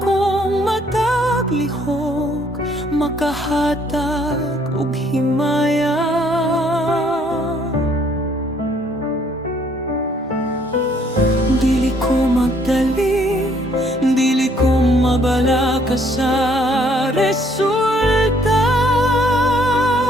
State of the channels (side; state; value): both; normal; correlation 0.65